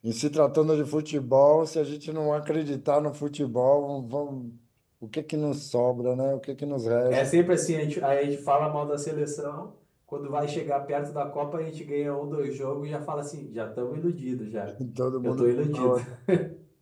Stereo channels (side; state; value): both; identical; correlation 1.00